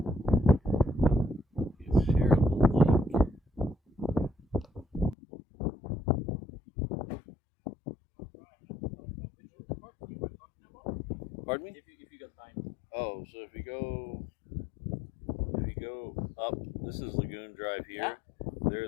Pardon me? If you got time. Oh, so if you go up, this is Lagoon Drive here.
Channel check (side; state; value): right; drops out; at 5.2 s